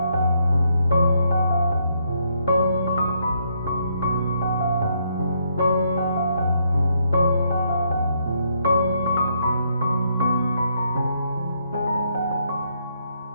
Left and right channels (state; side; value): inverted; both; correlation -0.74